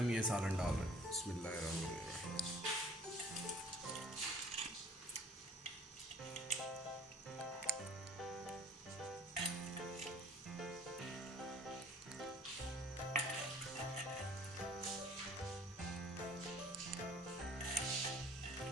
ये सालन डाल रहे हैं। बिस्मिल्लाहिर्रहमानिर्रहीम।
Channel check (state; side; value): normal; both; correlation 0.52